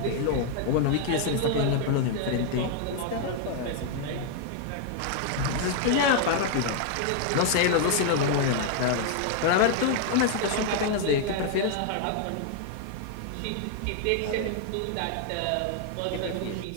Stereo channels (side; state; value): both; different; correlation 0.00